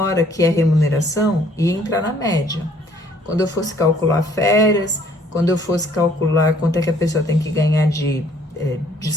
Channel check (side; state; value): both; normal; correlation 0.61